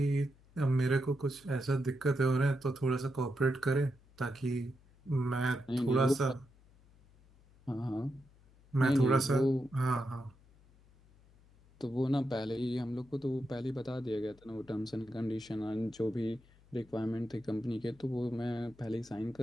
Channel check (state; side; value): noise; left; hum, 27 dB below the sound